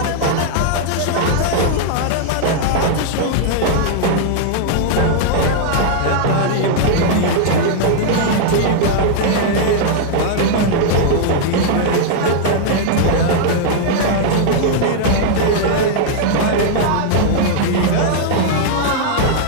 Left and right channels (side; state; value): both; different; correlation -0.01